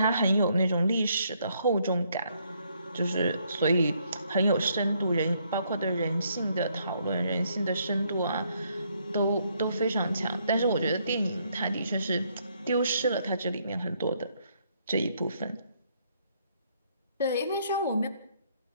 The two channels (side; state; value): both; inverted; correlation -0.71